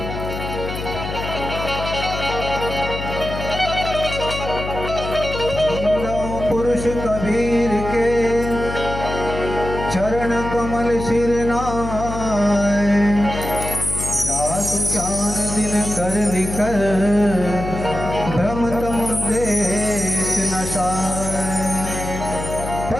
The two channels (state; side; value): noise; left; hum, 6 dB below the sound